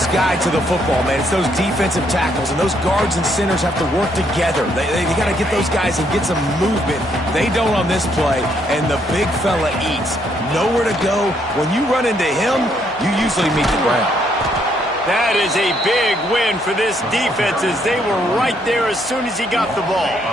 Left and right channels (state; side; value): normal; both; correlation 0.72